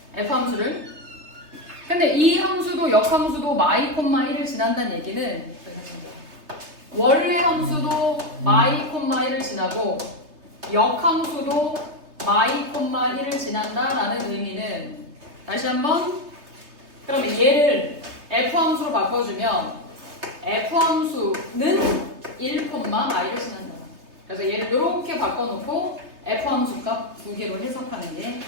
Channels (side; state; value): left; late; 3.3 ms